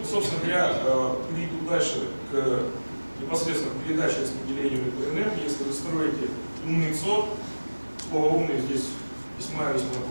собственно говоря, перейду дальше непосредственно к передаче и распределению электроэнергии. Если вы строите умный ЦОД, слово «умный» здесь весьма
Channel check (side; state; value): both; inverted; correlation -1.00